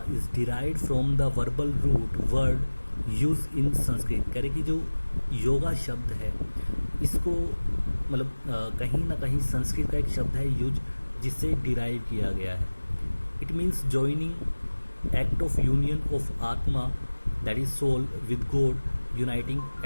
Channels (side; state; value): both; inverted; correlation -1.00